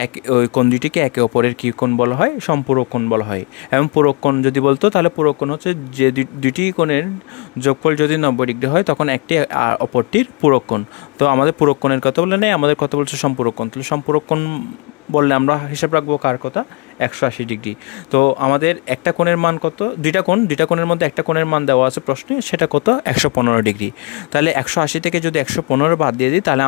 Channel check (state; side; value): quieter; right; 30.2 dB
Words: ওই কোণ দুইটিকে একে অপরের কী কোণ বলা হয়? সম্পূরক কোণ বলা হয়। এবং পূরক কোণ যদি বলতো তাহলে পূরক কোণ হচ্ছে যে দুইটি কোণের যোগফল যদি 90 ডিগ্রি হয় তখন একটি অপরটির পূরক কোণ। তো আমাদের পূরক কোণের কথা বলে নেই, আমাদের কথা বলছে সম্পূরক কোণ। তাহলে সম্পূরক কোণ বললে আমরা হিসাব রাখবো কার কথা? 180 ডিগ্রি। তো আমাদের একটা কোণের মান কত? দুইটা কোণের মধ্যে একটা কোণের মান দেওয়া আছে প্রশ্নে, সেটা কত? 115 ডিগ্রি। তাহলে 180 থেকে যদি 115 বাদ দিয়ে দিই তাহলে